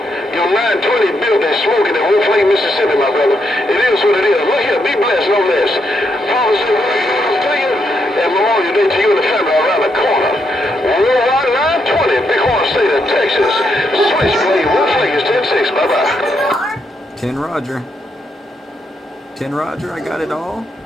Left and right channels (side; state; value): both; normal; correlation 0.79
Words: your 920 building smoking in Wolf Lake, Mississippi, my brother. It is what it is. Look here, be blessed, no less. Promise to you, and Memorial Day to you and the family around the corner. Worldwide 920, Bighorn State of Texas. Switchblade, Wolf Lake is 10-6. Bye-bye. 10 Roger. 10 Roger, I got it all.